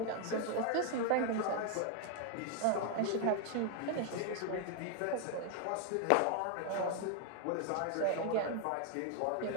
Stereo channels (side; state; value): both; different; correlation 0.00